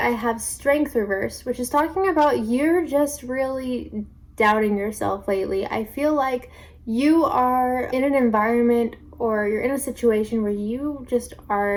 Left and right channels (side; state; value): both; identical; correlation 1.00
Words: have strength reversed, which is talking about you're just really doubting yourself lately. I feel like you are in an environment, or you're in a situation where you just